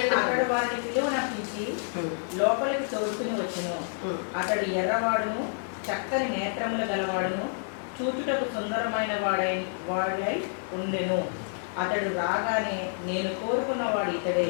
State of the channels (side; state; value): right; silent; 59 dB below the other